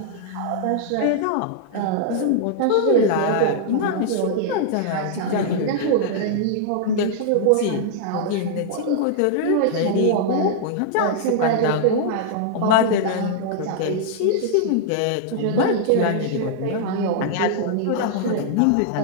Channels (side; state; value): both; different; correlation -0.01